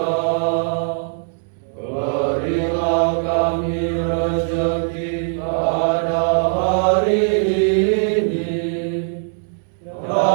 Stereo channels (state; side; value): silent; left; 66 dB below the other